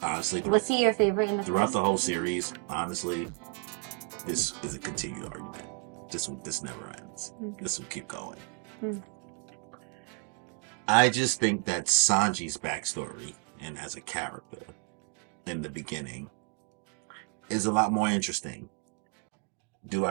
honestly, Was he your favorite in the throughout first? the whole series, honestly, this is a continued argument. This never ends. This will keep going. I just think that Sanji's backstory and as a character in the beginning is a lot more interesting. Do I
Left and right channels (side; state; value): left; quieter; 34.4 dB